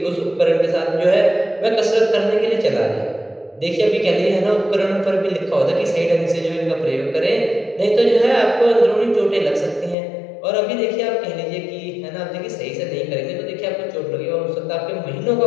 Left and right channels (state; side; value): drops out; right; at 10.0 s